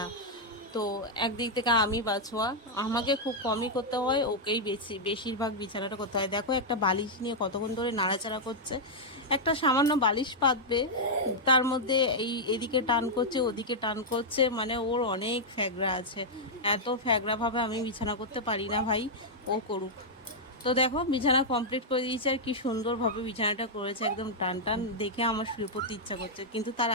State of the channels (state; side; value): normal; both; correlation -0.05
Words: তো একদিক থেকে আমি বাছোয়া, আমাকে খুব কমই করতে হয়, ওকেই বেশিরভাগ বিছানাটা করতে হয়। দেখো একটা বালিশ নিয়ে কতক্ষণ ধরে নাড়াচাড়া করছে। একটা সামান্য বালিশ পাতবে, তার মধ্যে এদিকে টান করছে ওদিকে টান করছে, মানে ওর অনেক ফ্যাগরা আছে। এত ফ্যাগরাভাবে আমি বিছানা করতে পারি না ভাই, ও করুক। তো দেখো বিছানা কমপ্লিট করে দিয়েছে, আর কি সুন্দরভাবে বিছানাটা করেছে, একদম টান টান, দেখে আমার শুয়ে পড়তে ইচ্ছা করছে। কিন্তু তার